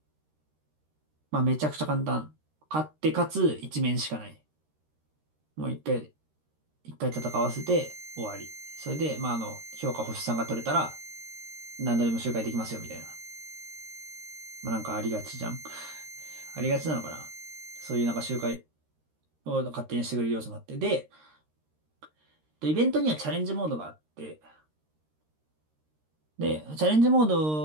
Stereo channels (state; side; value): late; left; 13 ms